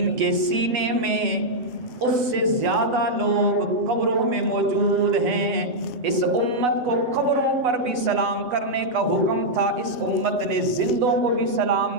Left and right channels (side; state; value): left; late; 8.1 ms